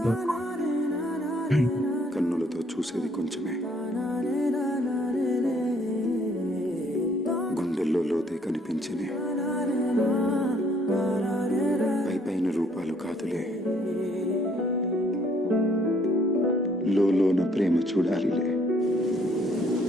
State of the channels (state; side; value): normal; both; correlation 0.64